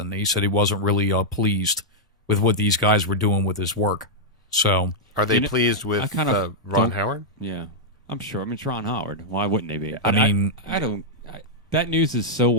He said he wasn't really pleased with what these guys were doing with his work. So, are they pleased with Ron Howard? Yeah, I'm sure. I mean, it's Ron Howard. Why wouldn't they be? I mean, I don't. That news is so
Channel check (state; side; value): normal; both; correlation -0.05